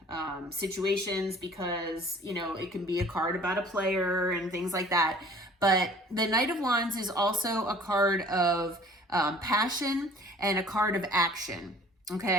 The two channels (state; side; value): normal; both; correlation 0.50